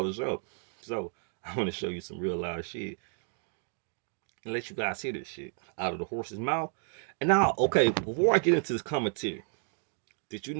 up. So, I want to show you some real live shit and let you guys hear this shit out of the horse's mouth. And now, okay, before I get into this commentary, did you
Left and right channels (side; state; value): left; silent; 57 dB below the other